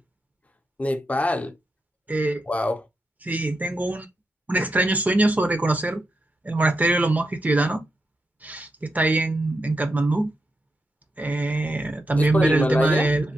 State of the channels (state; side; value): normal; both; correlation 0.86